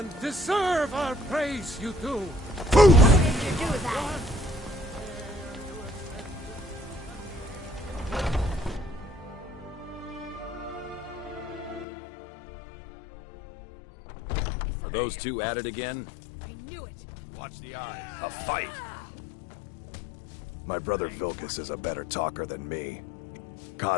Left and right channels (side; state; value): right; drops out; at 11.9 s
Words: deserve our praise, you do! What did you do with that? Are those two at it again? I knew it. Watch the eyes. A fight! My brother Vilkas is a better talker than me.